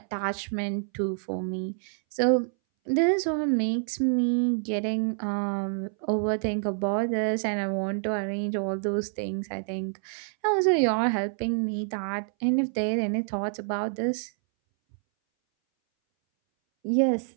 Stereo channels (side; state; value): left; silent; 60 dB below the other